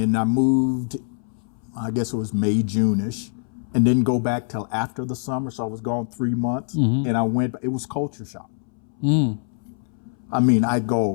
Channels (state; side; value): silent; right; 63 dB below the other